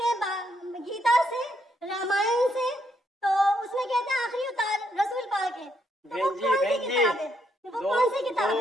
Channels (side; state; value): both; normal; correlation 0.75